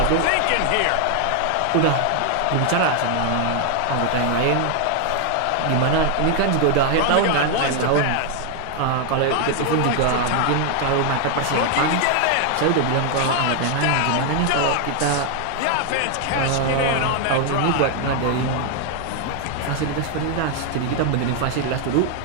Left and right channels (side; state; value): both; different; correlation 0.00